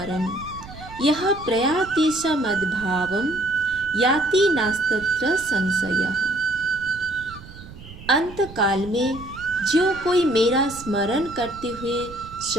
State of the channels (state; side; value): noise; right; rumble, 16 dB below the sound